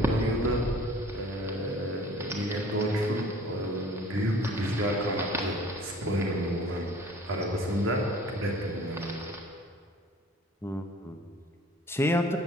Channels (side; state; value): both; normal; correlation 0.49